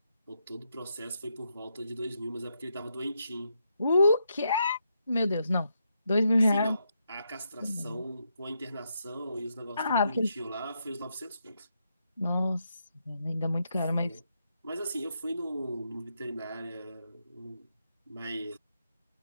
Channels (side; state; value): both; inverted; correlation -0.80